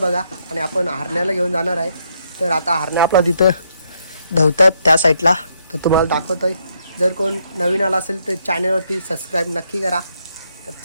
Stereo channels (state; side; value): inverted; both; correlation -0.75